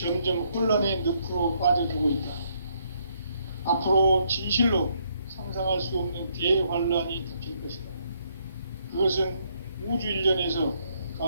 혼란의 늪으로 빠져들고 있다. 앞으로 진실로 상상할 수 없는 대환란이 닥칠 것이다. 그것은 우주 일련에서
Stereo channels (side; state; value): both; inverted; correlation -0.72